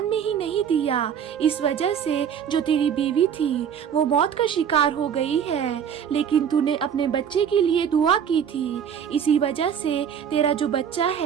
میں ہی نہیں دیا، اس وجہ سے جو تیری بیوی تھی وہ موت کا شکار ہو گئی ہے، لیکن تو نے اپنے بچے کے لیے دعا کی تھی، اسی وجہ سے تیرا جو بچہ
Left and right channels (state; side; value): quieter; left; 8.2 dB